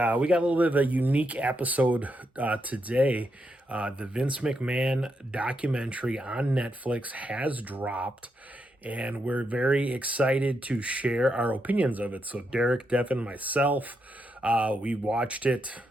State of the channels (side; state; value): both; normal; correlation 0.82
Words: we got a little bit of a unique episode today. The Vince McMahon documentary on Netflix has dropped, and we're very excited to share our opinions of it. So, Derek, Devon, myself, we watched it